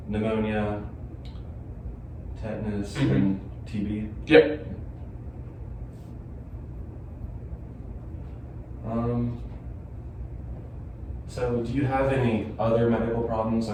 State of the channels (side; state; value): both; identical; correlation 1.00